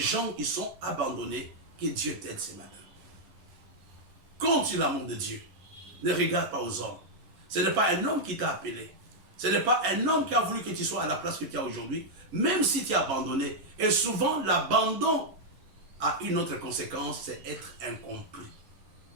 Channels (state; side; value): late; left; 11 ms